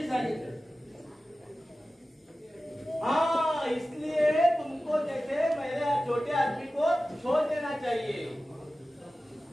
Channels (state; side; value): normal; both; correlation 0.95